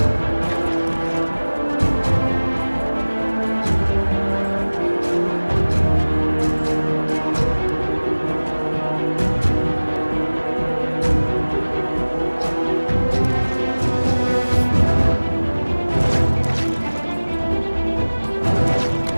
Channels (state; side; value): inverted; both; correlation -1.00